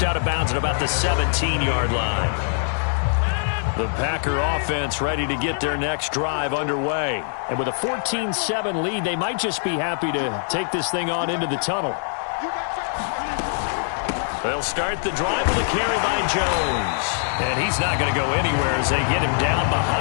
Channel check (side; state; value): right; silent; digital silence